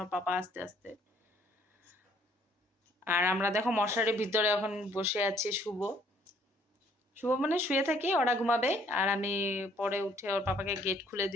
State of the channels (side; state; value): both; normal; correlation 0.62